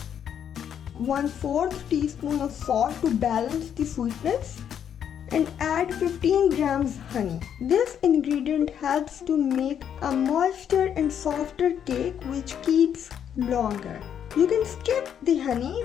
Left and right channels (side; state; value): right; quieter; 8.8 dB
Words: 1/4 teaspoon of salt to balance the sweetness, and add 15 grams honey. This ingredient helps to make a moister and softer cake which keeps longer. You can skip the honey,